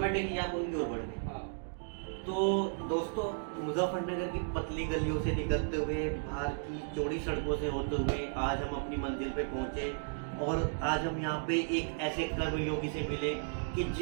आप उनकी ओर बढ़ गए। हाँ। तो दोस्तों, मुजफ्फरनगर की पतली गलियों से निकलते हुए, बाहर की चौड़ी सड़कों से होते हुए आज हम अपनी मंजिल पे पहुंचे, और आज हम यहाँ पे एक ऐसे कर्मयोगी से मिले कि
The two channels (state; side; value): silent; left; digital silence